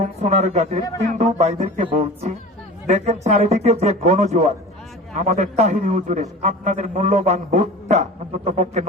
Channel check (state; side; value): normal; both; correlation 0.37